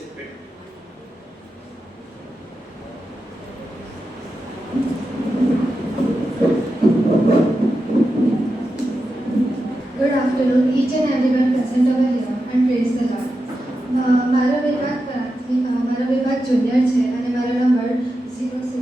Good afternoon, each and everyone present over here, and praise the Lord. મારો વિભાગ જુનિયર છે અને મારો નંબર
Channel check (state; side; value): normal; both; correlation 0.90